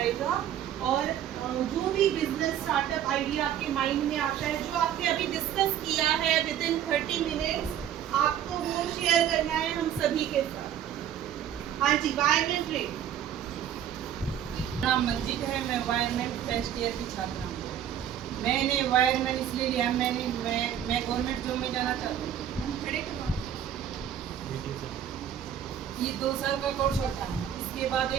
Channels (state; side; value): quieter; left; 10.2 dB